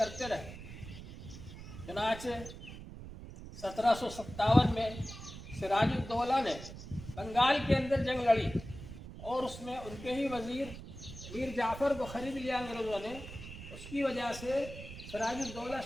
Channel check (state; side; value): noise; right; rumble, 12 dB below the sound